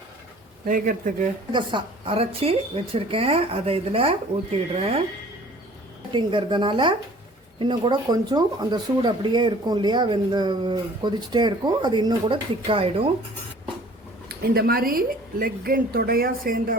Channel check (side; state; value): both; normal; correlation 0.50